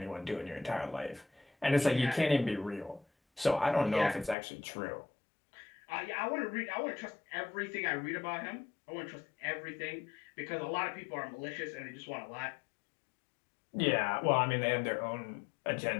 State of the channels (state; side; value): drops out; right; at 4.4 s